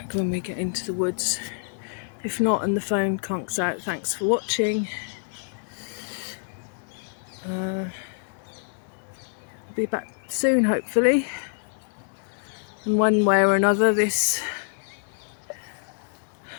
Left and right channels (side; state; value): right; silent; 61 dB below the other